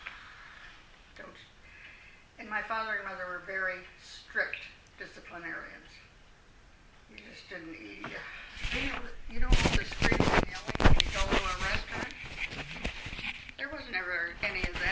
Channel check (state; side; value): identical; both; correlation 1.00